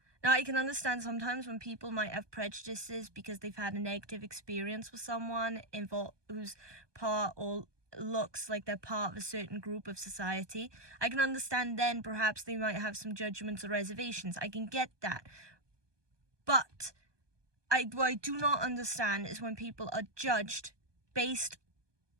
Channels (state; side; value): late; left; 1.2 ms